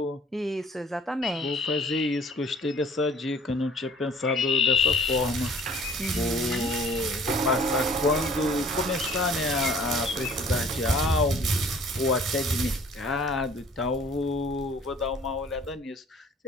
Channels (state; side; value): normal; both; correlation 0.52